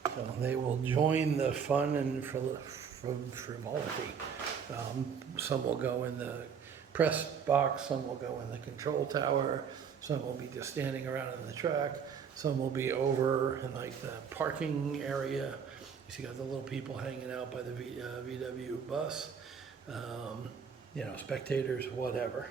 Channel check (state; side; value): quieter; left; 6.9 dB